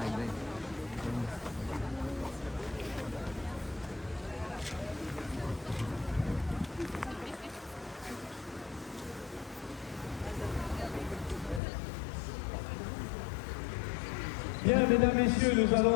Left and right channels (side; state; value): right; drops out; at 11.6 s